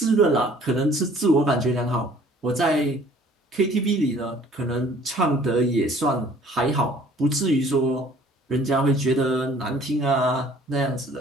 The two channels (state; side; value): normal; both; correlation 0.54